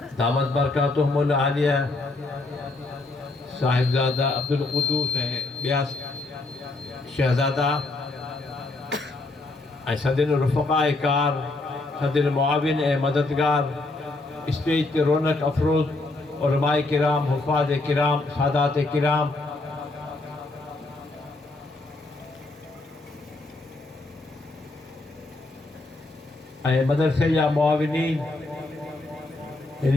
दामत बरकातुहुमुल आलिया साहिबज़ादा अब्दुल क़ुद्दूस ऐं ॿिया शहज़ादा ऐं सदिन रुफ़क़ाए कार सदिन मुआविन ऐं मददगार स्टेज ते रौनक अफ़रोज़ उलमाए किराम हुफ़ाज़ किराम सादात किराम ऐं मदरसे जा मुआविनीन हिन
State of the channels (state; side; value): quieter; right; 3.1 dB